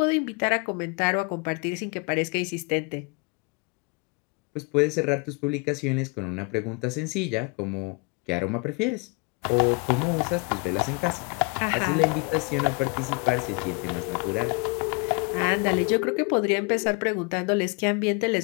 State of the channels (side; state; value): right; quieter; 31.2 dB